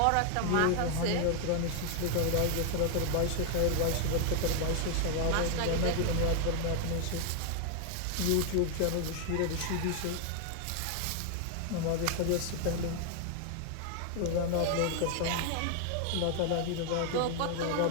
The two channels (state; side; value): different; both; correlation 0.00